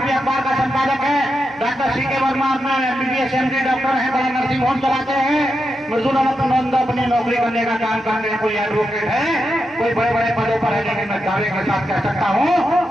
अखबार का संपादक है, डॉक्टर CK वर्मा अपना MBBS MD डॉक्टर है, बड़ा नर्सिंग होम चलाते हैं, मृदुलानंद अपनी नौकरी करने का काम करते हैं, कोई एडवोकेट है, कोई बड़े बड़े पदों पर है। लेकिन मैं दावे के साथ कह सकता हूँ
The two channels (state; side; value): normal; both; correlation 0.86